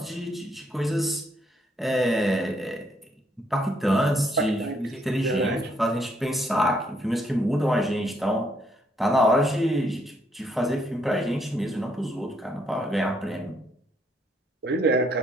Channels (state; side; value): normal; both; correlation 0.72